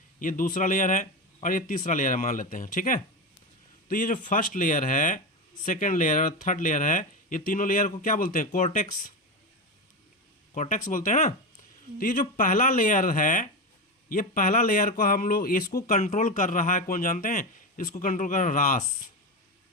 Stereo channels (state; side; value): normal; both; correlation 0.17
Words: ये दूसरा लेयर है और ये तीसरा लेयर है मान लेते हैं, ठीक है। तो ये जो फर्स्ट लेयर है, सेकेंड लेयर और थर्ड लेयर है, ये तीनों लेयर को क्या बोलते हैं? कॉर्टेक्स, कॉर्टेक्स बोलते हैं ना। तो ये जो पहला लेयर है, ये पहला लेयर को हम लोग इसको कंट्रोल कर रहा है, कौन जानते हैं? इसको कंट्रोल कर रहा है रास,